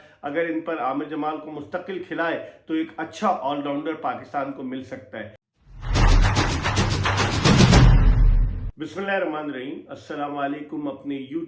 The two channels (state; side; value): identical; both; correlation 1.00